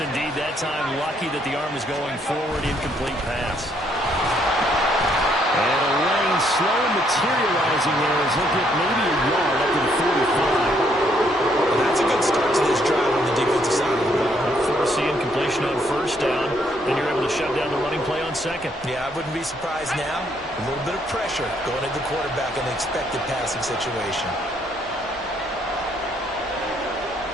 indeed. That time, lucky that the arm is going forward. Incomplete pass. And a lane slow materializing there as he'll get maybe a yard up to the 45. Well, that's a good start to this drive on the defensive side of the ball. Force the incompletion on 1st down, and you're able to shut down the running play on 2nd. Yeah, I wouldn't be surprised now. A little bit of pressure going at the quarterback in the expected passing situation.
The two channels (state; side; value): normal; both; correlation 0.70